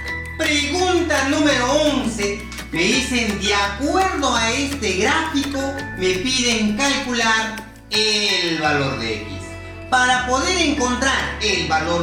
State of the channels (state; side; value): identical; both; correlation 1.00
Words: Pregunta número 11. Me dicen, de acuerdo a este gráfico, me piden calcular el valor de X. Para poder encontrar el